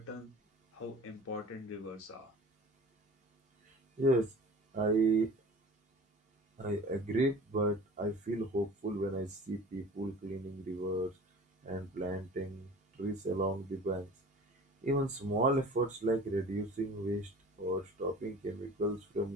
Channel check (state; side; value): normal; both; correlation 0.42